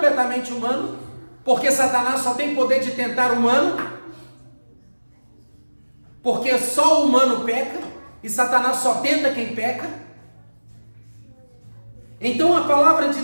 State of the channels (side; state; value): both; inverted; correlation -1.00